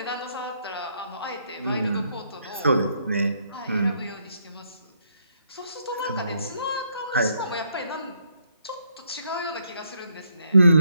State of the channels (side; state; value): both; inverted; correlation -0.73